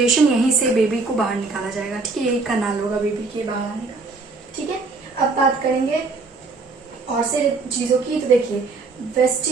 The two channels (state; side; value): quieter; left; 3.9 dB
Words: यहीं से बेबी को बाहर निकाला जाएगा। ठीक है, यही कनाल होगा बेबी के बाहर आने का। ठीक है, अब बात करेंगे और से चीजों की, तो देखिए